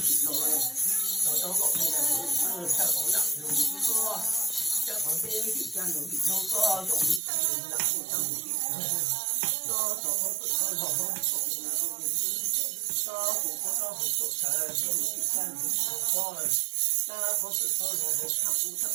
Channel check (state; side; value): drops out; left; at 7.2 s